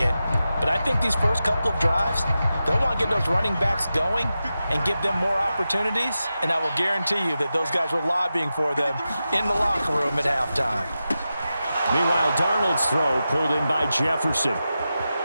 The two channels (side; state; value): both; inverted; correlation -0.91